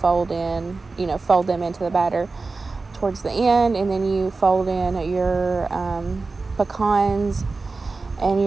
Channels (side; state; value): left; quieter; 3.9 dB